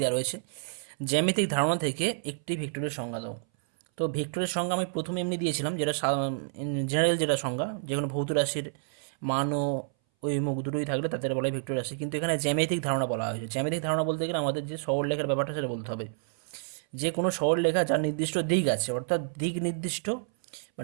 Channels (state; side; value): silent; left; 58 dB below the other